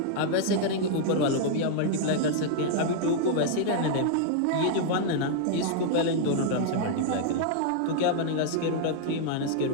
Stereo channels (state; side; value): different; both; correlation -0.01